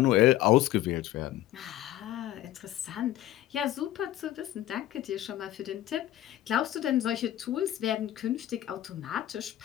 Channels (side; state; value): right; quieter; 13.5 dB